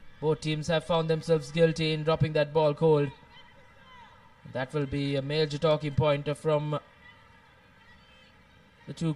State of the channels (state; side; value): identical; both; correlation 1.00